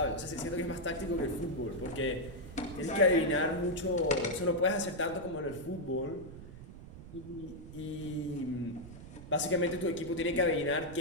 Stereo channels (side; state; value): right; noise; rumble, 14 dB below the sound